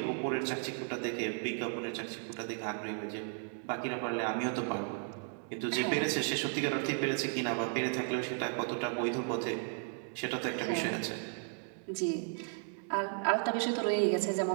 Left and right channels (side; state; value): left; silent; 55 dB below the other